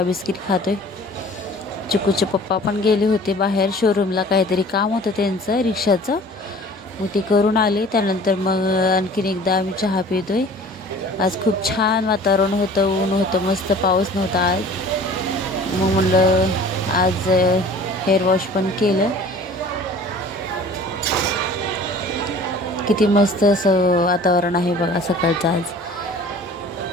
बिस्किट खातोय. चिकूचे पप्पा पण गेले होते बाहेर शोरूमला, काहीतरी काम होतं त्यांचं रिक्षाचं, मग ते करून आले. त्यानंतर मग आणखीन एकदा आम्ही चहा पितोय. आज खूप छान वातावरण होतं, ऊन होतं, मस्त पाऊस नव्हता आज. मग म्हणलं आज हेअर वॉश पण केलं. किती मस्त असं वातावरण आहे बघा सकाळचं आज.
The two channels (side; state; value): both; normal; correlation 0.46